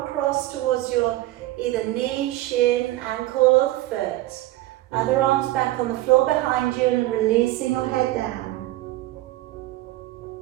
towards your either knee, shin, ankle or the foot. Other arms back on the floor behind you and releasing your head down.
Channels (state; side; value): quieter; left; 16.9 dB